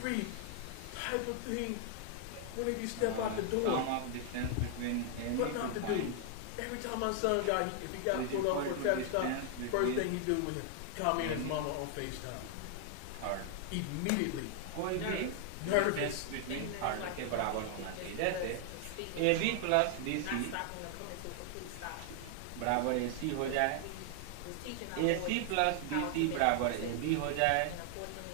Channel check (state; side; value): different; both; correlation 0.00